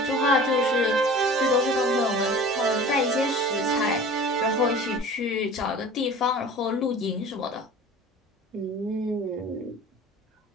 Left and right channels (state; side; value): normal; both; correlation 0.41